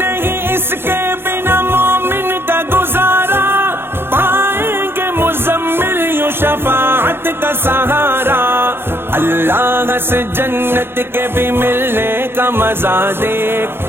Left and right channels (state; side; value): late; left; 0.11 ms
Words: اس کے بنا مومن کا گزارا، پائیں گے مزمل یوں شفاعت کا سہارا، اللہ سے جنت کے بھی ملنے کا مزہ دیکھ،